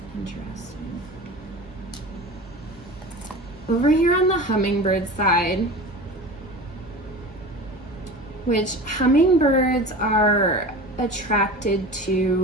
Interesting. Over here on the hummingbird side, which hummingbirds are attracted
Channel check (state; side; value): normal; both; correlation 0.34